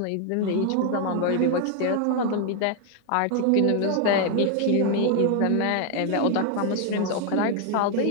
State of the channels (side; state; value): both; different; correlation 0.01